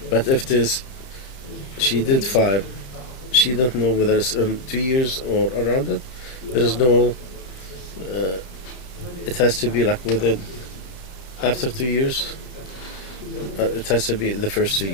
But if it is she did 5, she don't know whether it's in 2 years or around it, there is no it has to be like within after 2 years, it has to be the first 2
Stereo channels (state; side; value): late; right; 31 ms